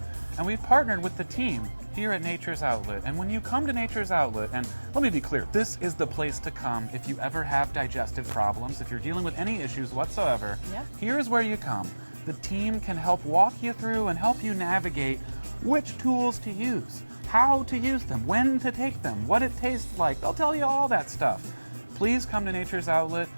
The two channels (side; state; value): both; inverted; correlation -1.00